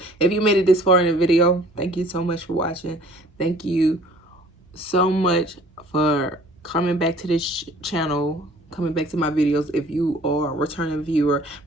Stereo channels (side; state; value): both; normal; correlation 0.52